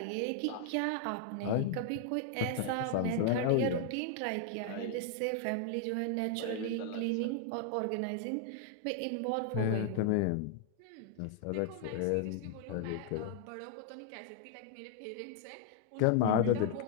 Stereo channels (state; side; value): different; both; correlation 0.00